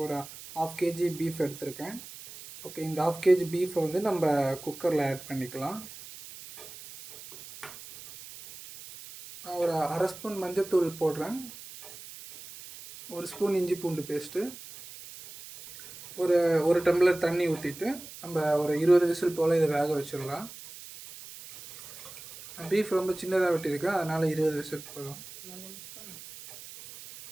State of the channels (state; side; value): noise; right; hiss, 15 dB below the sound